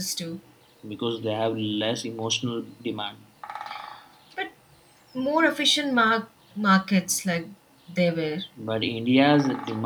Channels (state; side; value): identical; both; correlation 1.00